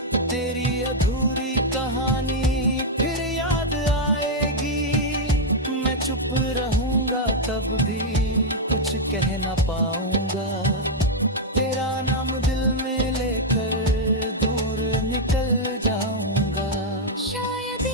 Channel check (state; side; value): normal; both; correlation -0.02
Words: तेरी अधूरी कहानी फिर याद आएगी। मैं चुप रहूंगा तब भी कुछ कह ना पाऊंगा, तेरा नाम दिल में लेकर दूर निकल जाऊंगा। शायद